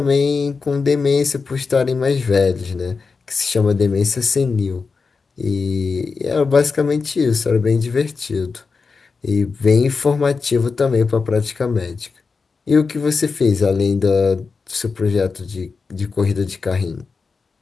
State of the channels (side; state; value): right; quieter; 4.7 dB